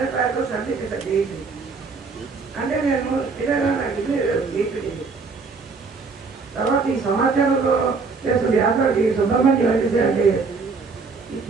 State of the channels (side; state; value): left; quieter; 4.6 dB